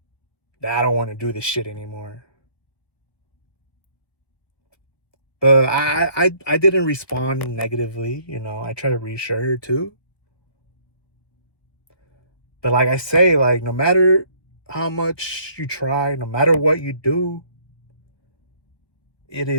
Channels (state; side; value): late; right; 1.1 ms